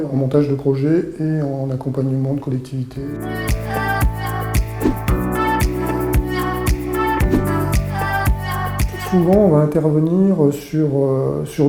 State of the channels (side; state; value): both; identical; correlation 1.00